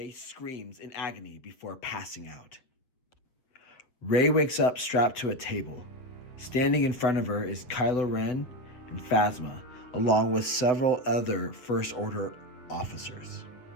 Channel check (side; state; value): right; late; 7.8 ms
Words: screams in agony before passing out. Rey wakes up strapped to a table. Standing in front of her is Kylo Ren and Phasma, along with several other First Order officers.